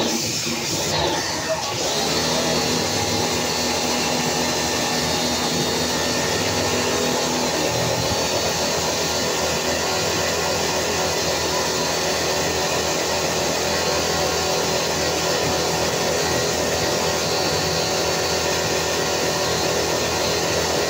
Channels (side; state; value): both; identical; correlation 1.00